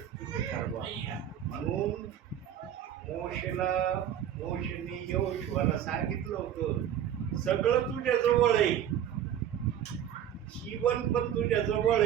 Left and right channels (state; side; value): quieter; left; 10.1 dB